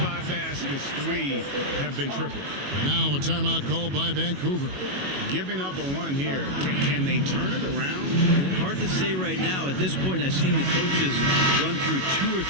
baskets, 3 have been triples. Now a timeout called by Vancouver. Giving up a run here. Can they turn it around? Hard to say right now. At this point, I've seen the coaches run through 2 or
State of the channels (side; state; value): left; late; 22 ms